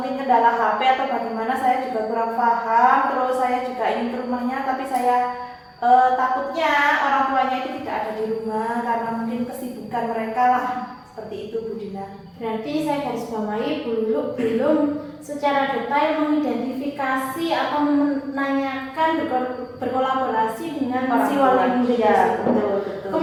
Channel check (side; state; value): both; identical; correlation 1.00